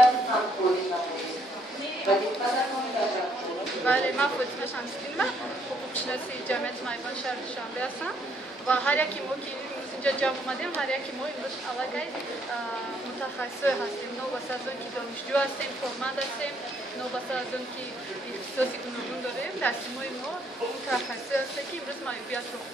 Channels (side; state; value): both; normal; correlation 0.69